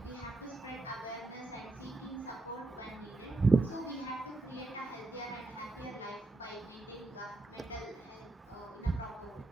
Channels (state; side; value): quieter; left; 3.1 dB